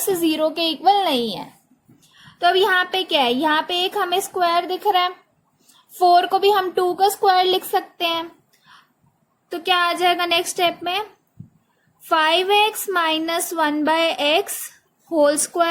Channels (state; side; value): identical; both; correlation 1.00